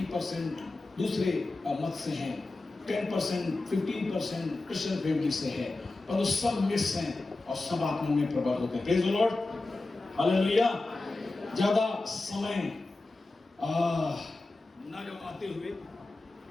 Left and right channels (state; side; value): quieter; right; 3.2 dB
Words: दूसरे मत से हैं, 10% 15% क्रिश्चियन फैमिली से है, पर वो सब मिक्स हैं और सब आत्मा में प्रबल होते हैं। Praise the Lord. हालेलुया। ज्यादा समय ना गवाते हुए